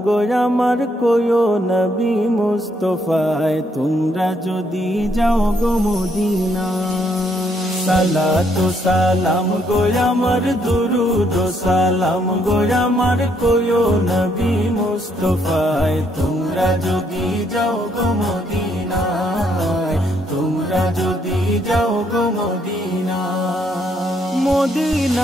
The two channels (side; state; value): both; normal; correlation 0.72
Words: গো আমার কোয়ো নবী মুস্তাফায় তোমরা যদি যাও গো মদিনা। সালাতু সালাম গো আমার দুরুদ ও সালাম গো আমার কোয়ো নবী মুস্তাফায় তোমরা যদি যাও গো মদিনায়, তোমরা যদি যাও গো মদিনা।